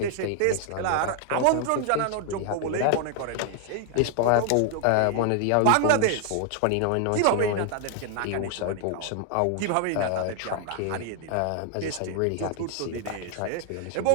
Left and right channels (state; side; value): different; both; correlation 0.00